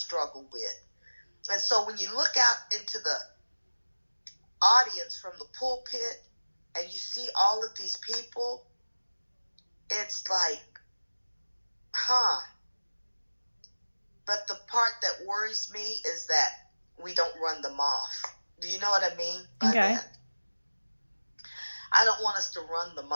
with. And so when you look out into the audience from the pulpit and you see all of these people, it's like, But the part that worries me is that we don't run them off. Do you know what I mean by that? I don't want us to run them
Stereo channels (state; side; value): inverted; both; correlation -1.00